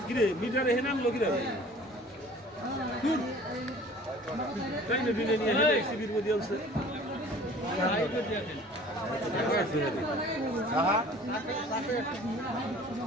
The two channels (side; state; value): both; normal; correlation 0.48